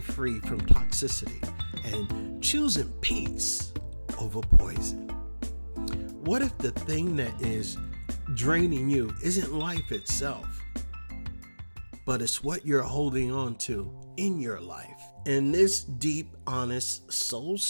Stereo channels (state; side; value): inverted; both; correlation -1.00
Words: from toxicity and choosing peace over poison. What if the thing that is draining you isn't life itself, but it's what you're holding on to in your life? In this deep, honest,